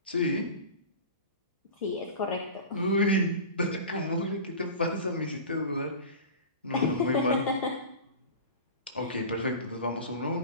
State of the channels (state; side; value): inverted; both; correlation -0.33